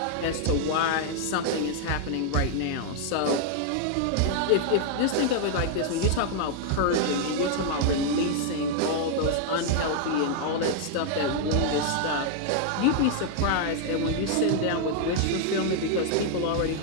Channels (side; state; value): both; different; correlation 0.00